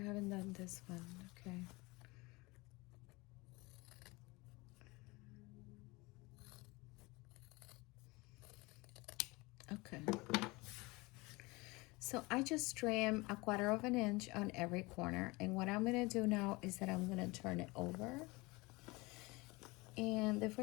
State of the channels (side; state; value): right; quieter; 24.0 dB